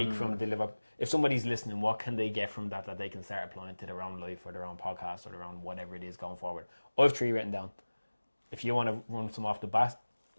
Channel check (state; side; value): inverted; both; correlation -1.00